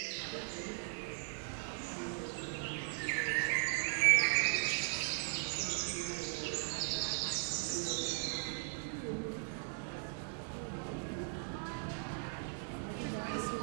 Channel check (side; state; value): left; silent; 52 dB below the other